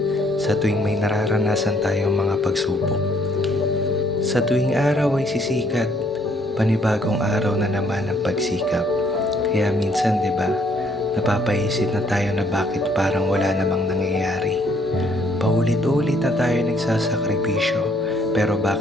sa tuwing may nararanasan tayong mga pagsubok. Sa tuwing araw ay sisikat, panibagong araw na naman ang pagsikap. Kaya minsan, di ba, napapaisip na tayo na bakit parang wala namang nangyayari. Paulit-ulit na tayo nagsasakripisyo, pero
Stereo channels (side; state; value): both; normal; correlation 0.66